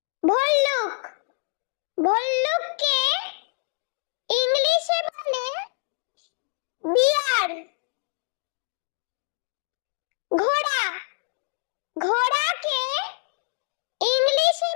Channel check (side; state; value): right; silent; digital silence